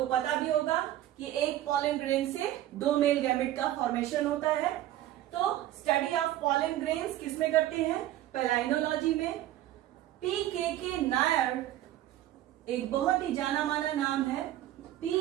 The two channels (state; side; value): quieter; left; 13.6 dB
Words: पता भी होगा कि एक pollen grain से 2 मेल गैमेट का फॉर्मेशन होता है. तो स्टडी ऑफ pollen grains किसमें करते हैं? Palynology में. P.K.K. नायर एक बहुत ही जाना माना नाम है.